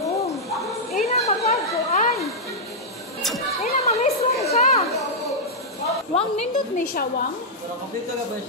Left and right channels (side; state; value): both; normal; correlation -0.07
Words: Ina magagkuan. Ina mamisong ka. Wang nindot ni siya, Wang? Pero kompleto ka ba